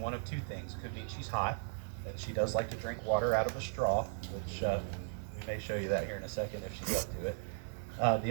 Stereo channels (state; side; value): silent; left; digital silence